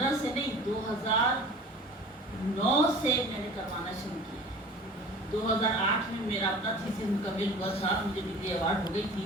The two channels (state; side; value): normal; both; correlation 0.42